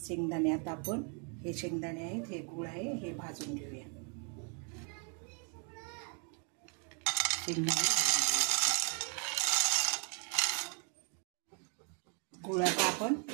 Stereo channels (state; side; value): quieter; left; 39.1 dB